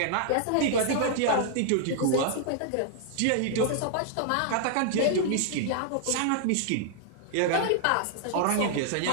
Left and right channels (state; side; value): different; both; correlation -0.01